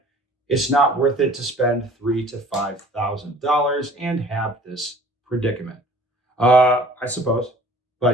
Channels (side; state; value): both; normal; correlation 0.50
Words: It's not worth it to spend $3,000 to $5,000 and have this predicament. I suppose,